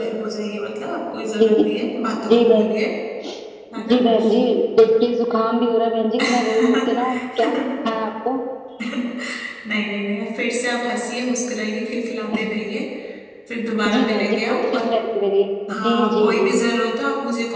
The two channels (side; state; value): both; identical; correlation 1.00